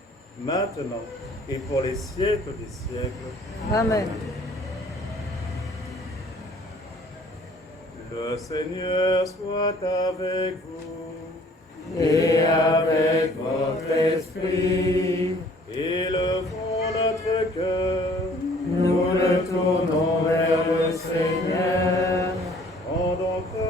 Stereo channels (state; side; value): normal; both; correlation 0.56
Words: maintenant et pour les siècles des siècles. Amen. Le Seigneur soit avec vous. Et avec votre esprit, Élevons notre cœur. nous le tournons vers le Seigneur. Rendons